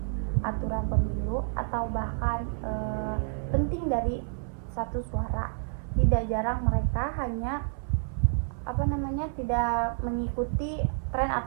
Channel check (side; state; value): left; silent; 58 dB below the other